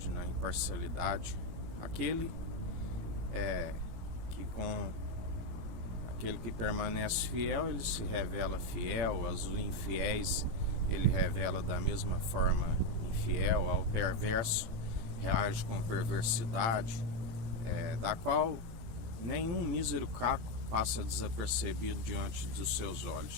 na imparcialidade, aquele que permanece fiel, ele se revela fiel, aos infiéis ele revela da mesma forma infiel, ao perverso reage com perversidade, da qual nenhum mísero caco passa desapercebido diante dos seus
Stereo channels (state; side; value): late; left; 18 ms